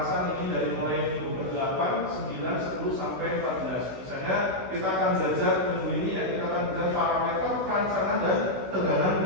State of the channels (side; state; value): left; late; 16 ms